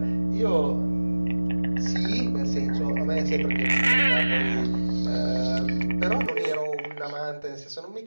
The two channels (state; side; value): inverted; both; correlation -1.00